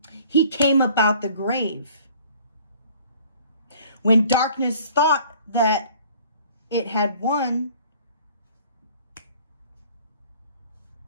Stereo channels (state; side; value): inverted; both; correlation -0.53